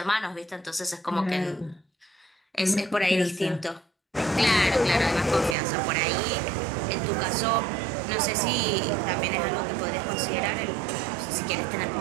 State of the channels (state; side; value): drops out; left; at 5.6 s